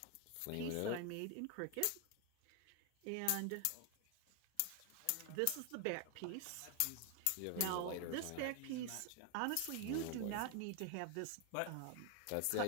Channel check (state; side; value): different; both; correlation 0.01